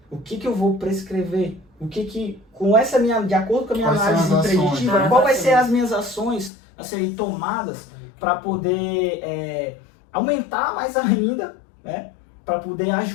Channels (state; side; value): drops out; right; at 6.5 s